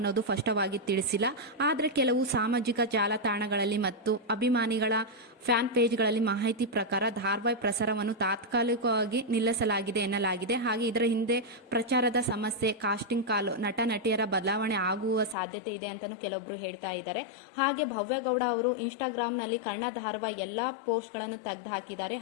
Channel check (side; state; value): right; drops out; at 15.4 s